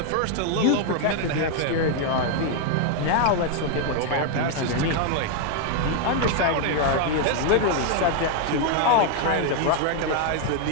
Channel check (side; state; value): both; different; correlation 0.00